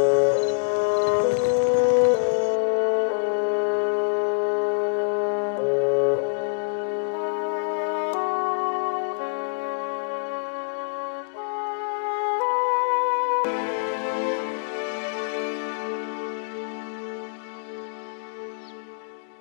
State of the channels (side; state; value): right; silent; digital silence